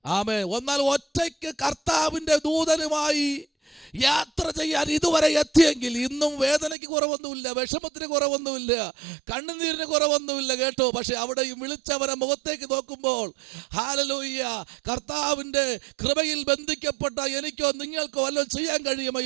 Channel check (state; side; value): drops out; left; at 6.8 s